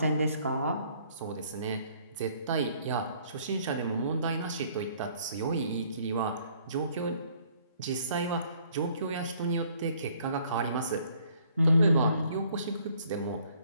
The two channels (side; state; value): both; inverted; correlation -0.62